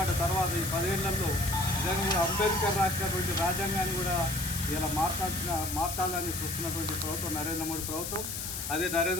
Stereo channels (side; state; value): left; noise; hiss, 5 dB below the sound